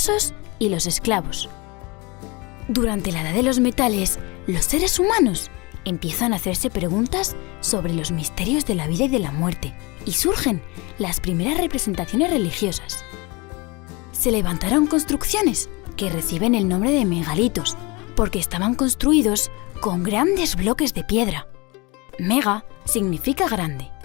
y los esclavos. Durante la edad de los metales, los seres humanos empiezan a hacerse preguntas sobre los misterios de la vida y de la muerte, y surgen las primeras representaciones religiosas. Se levantaron construcciones que reciben el nombre de megalitos, porque estaban construidos con grandes bloques de piedra. Mega significa grande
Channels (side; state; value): right; quieter; 26.1 dB